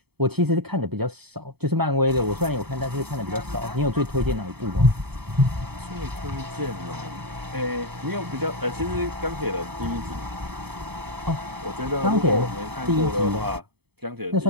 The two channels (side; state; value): left; late; 0.97 ms